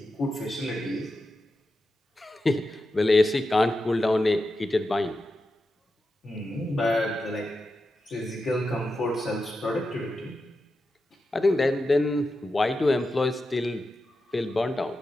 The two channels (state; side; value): normal; both; correlation 0.90